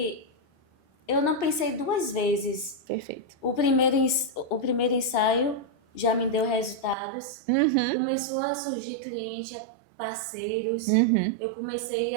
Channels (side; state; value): left; drops out; at 7.0 s